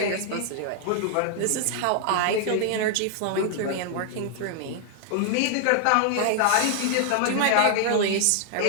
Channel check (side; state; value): both; different; correlation 0.00